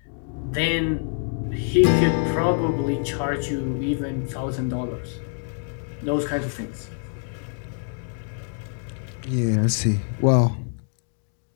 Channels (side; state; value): right; silent; 58 dB below the other